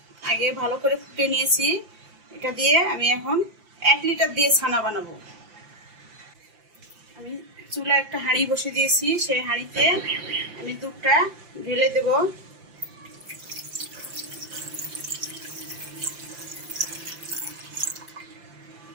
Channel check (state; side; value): late; left; 5.8 ms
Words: আগে ভালো করে ফুটে নিয়েছি। এটা দিয়ে আমি এখন 1 লিটার দিয়ে ছানা বানাবো। আমি চুলায় একটা হাঁড়ি বসে দিয়েছি, সেই হাঁড়িতে আমি দুধটা ঢেলে দেবো।